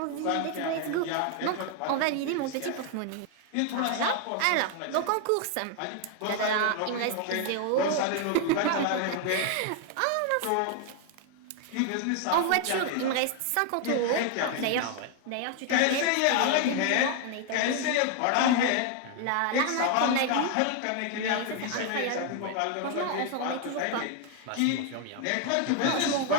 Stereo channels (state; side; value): different; both; correlation 0.00